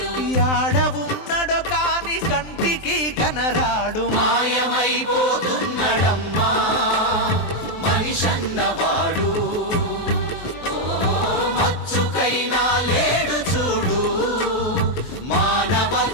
యాడ ఉన్నడో కాని కంటికి కనరాడు. మాయమైపోతున్నడమ్మా మనిషన్నవాడు, మచ్చుకైనా లేడు చూడు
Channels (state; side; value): late; right; 23 ms